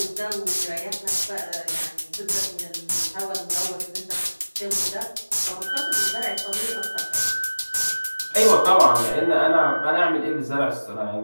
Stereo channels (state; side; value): inverted; both; correlation -1.00